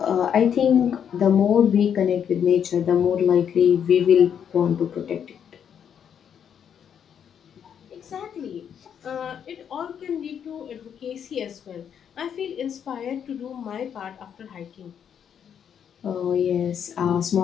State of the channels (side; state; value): right; quieter; 8.3 dB